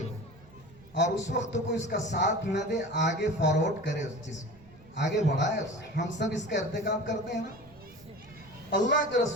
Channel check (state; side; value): noise; right; rumble, 24 dB below the sound